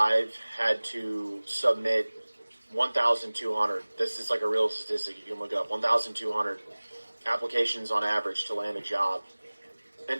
had to submit 1,200. This is like a real statistic. You can look it up. 1,200 applications on average to land a job.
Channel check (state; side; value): inverted; both; correlation -1.00